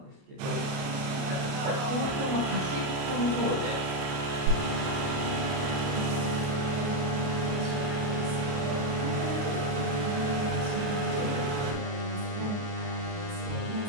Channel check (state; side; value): late; left; 29 ms